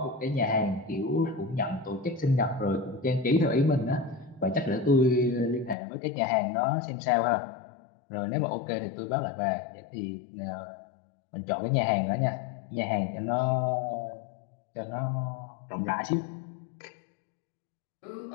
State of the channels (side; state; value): right; drops out; at 5.8 s